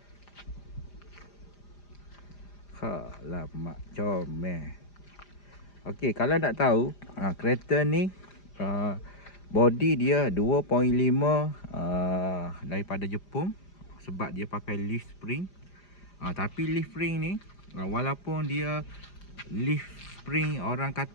Alamak, comel. Okey, kalau nak tahu kereta ni body dia 2.5 daripada Jepun, sebab dia pakai leaf spring. Tapi leaf spring ni walaupun dia leaf spring orang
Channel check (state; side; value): late; right; 4.9 ms